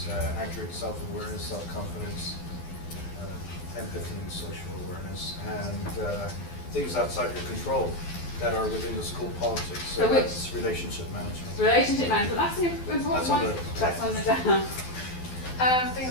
accurate self-awareness, self-confidence, empathy and social awareness, and things outside your control that are within the school politics. So that's relationship management. Relationship management. That's an important That's on one. the- That's on the down. Things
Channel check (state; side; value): late; right; 12 ms